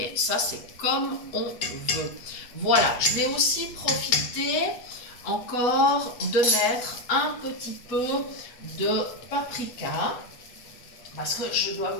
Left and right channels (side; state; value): right; late; 8.3 ms